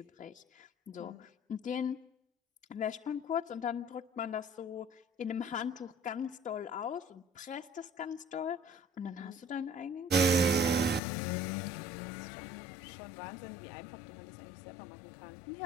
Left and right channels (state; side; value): drops out; right; at 11.0 s